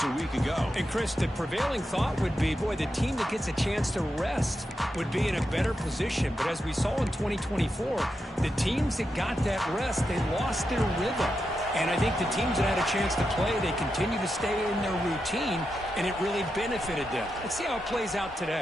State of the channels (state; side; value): normal; both; correlation 0.87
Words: a week ago. And, Chris, the prevailing thought would be, boy, the team that gets a chance to rest would be in a better position. But as we saw in 2024, the teams that got that rest, they lost their rhythm. And I think the teams that had a chance to play, they continue to stay in their routine, and it really benefited them. Let's see how it plays out